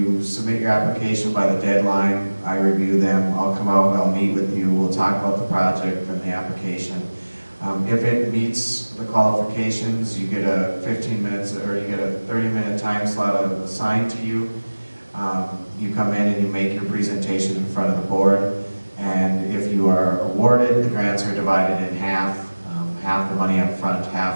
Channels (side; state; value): both; inverted; correlation -1.00